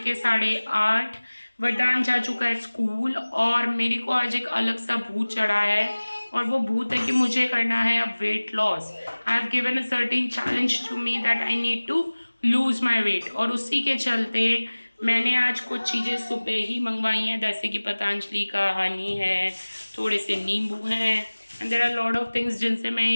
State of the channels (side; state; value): both; inverted; correlation -1.00